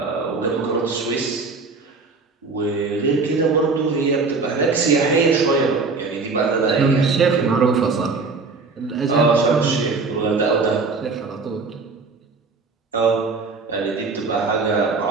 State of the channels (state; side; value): quieter; left; 4.2 dB